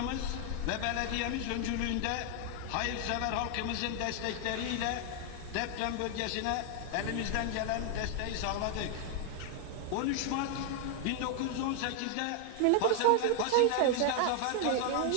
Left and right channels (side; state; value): both; different; correlation 0.00